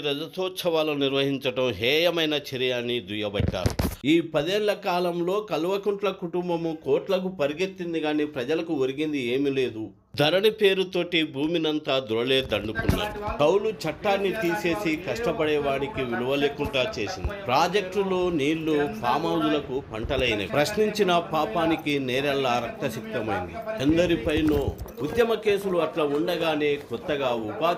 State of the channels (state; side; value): identical; both; correlation 1.00